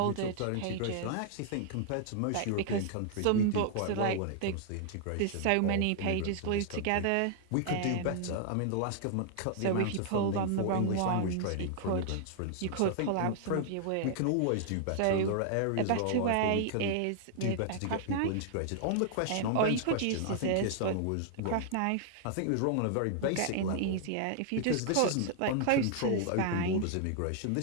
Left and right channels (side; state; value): both; different; correlation 0.00